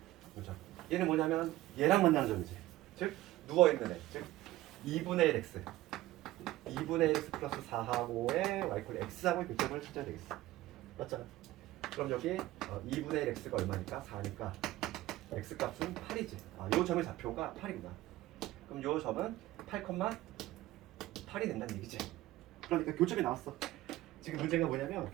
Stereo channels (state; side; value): quieter; left; 16.4 dB